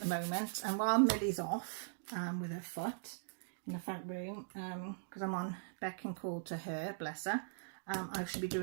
moment. And while Millie's off with her foot in the front room, because I'm on beck and call to her, bless her, I should be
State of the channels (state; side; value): silent; left; digital silence